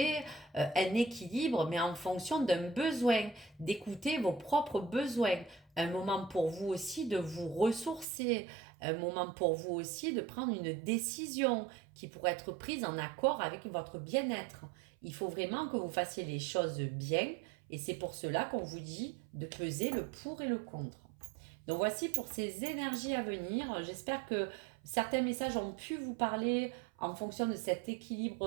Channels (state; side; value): drops out; left; at 8.1 s